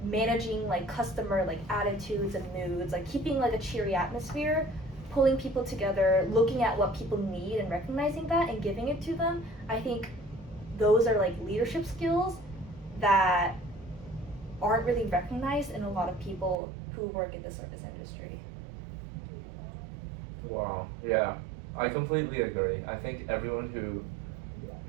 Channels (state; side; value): drops out; left; at 16.6 s